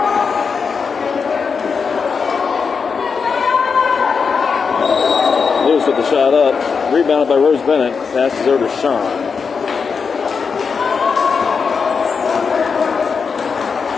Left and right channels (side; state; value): right; quieter; 5.6 dB